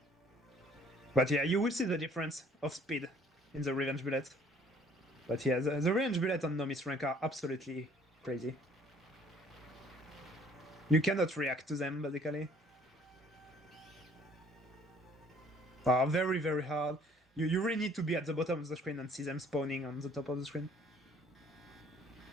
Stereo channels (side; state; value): both; normal; correlation 0.58